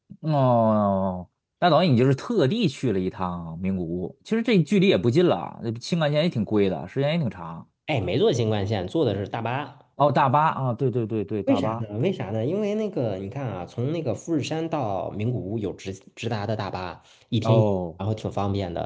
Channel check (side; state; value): both; identical; correlation 1.00